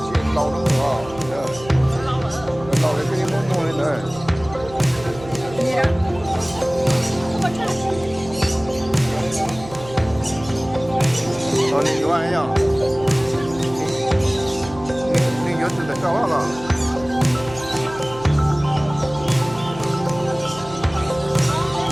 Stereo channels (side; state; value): right; noise; hum, 16 dB below the sound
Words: chuyện lâu lắm rồi, lâu đấy cái món mua lên rồi. Còn đi qua ấy nhở? Đi nhớ từ tại sao hả?